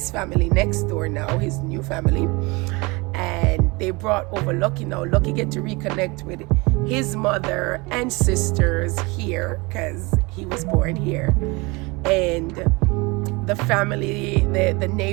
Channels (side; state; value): left; quieter; 25.9 dB